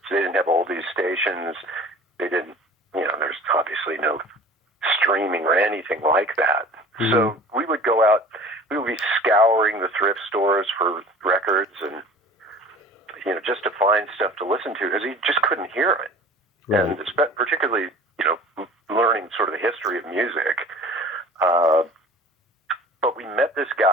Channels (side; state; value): both; normal; correlation 0.42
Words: They didn't have oldies stations. They didn't, there's obviously no streaming or anything like that. Mm-hmm. So we would go out, we would be scouring the thrift stores for records and, just to find stuff to listen to because you just couldn't hear it. Right. And particularly, learning sort of the history of music. But we met this